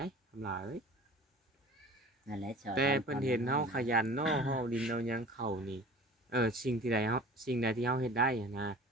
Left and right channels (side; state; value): both; normal; correlation 0.43